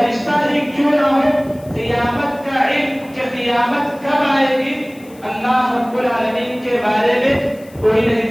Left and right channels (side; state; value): left; noise; hiss, 26 dB below the sound